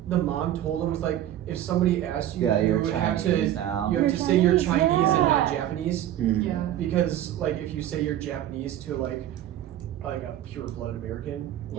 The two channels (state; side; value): quieter; left; 12.2 dB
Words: the mom told him, was like, if somebody asks you, Yeah, you you're have Chinese to now. you have You're to say you're Chinese, Chinese and not yeah. Japanese, Yeah. because like if you say you're Japanese to like a pure blood American,